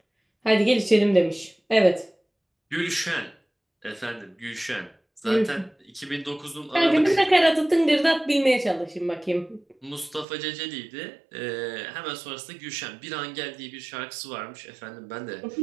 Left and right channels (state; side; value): drops out; left; at 10.2 s